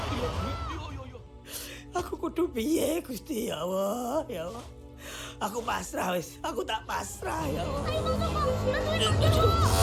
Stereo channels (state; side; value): identical; both; correlation 1.00